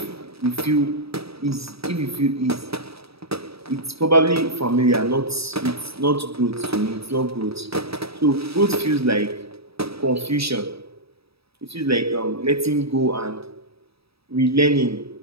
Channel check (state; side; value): late; left; 0.77 ms